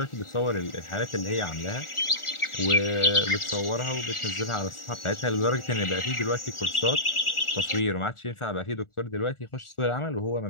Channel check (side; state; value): right; late; 1.4 ms